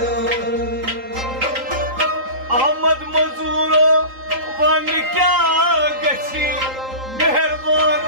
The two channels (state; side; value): late; left; 3.8 ms